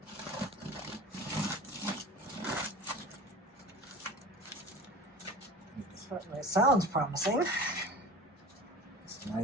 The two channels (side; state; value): both; normal; correlation 0.37